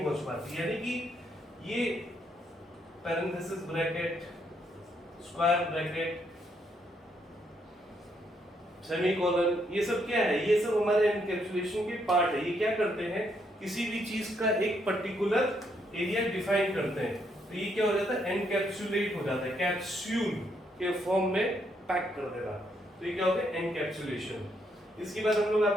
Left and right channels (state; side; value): normal; both; correlation 0.74